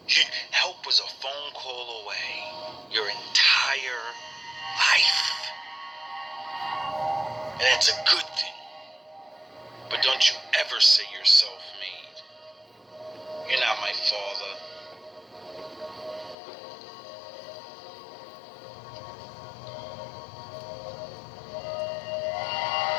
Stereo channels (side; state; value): right; drops out; at 16.4 s